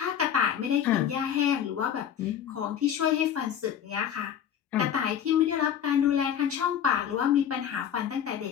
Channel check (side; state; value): right; quieter; 9.2 dB